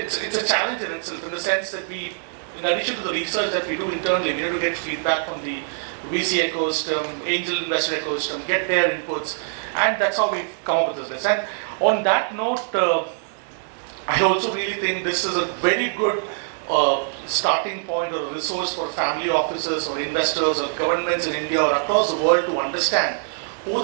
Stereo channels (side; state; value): left; silent; digital silence